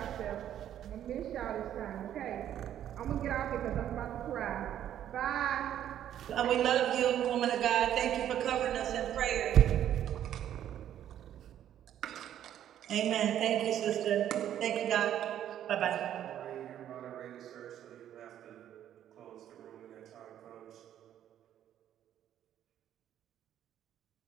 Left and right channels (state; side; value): quieter; left; 10.9 dB